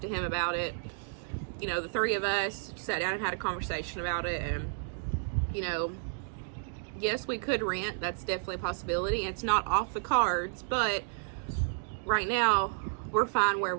to him about it. You know, the three of us sat down and had a conversation about it, and, you know, yes, we could rent. That's definitely a possibility. It's not off the cards, but right now we're fine where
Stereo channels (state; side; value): silent; left; digital silence